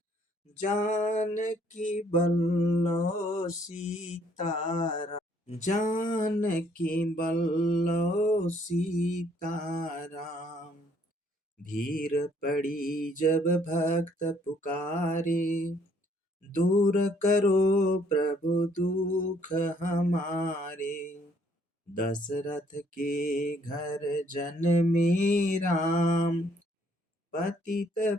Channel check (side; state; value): both; normal; correlation 0.65